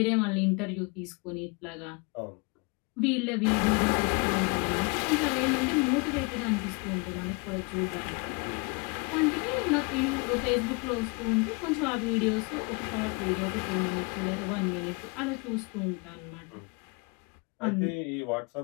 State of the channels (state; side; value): quieter; right; 30.3 dB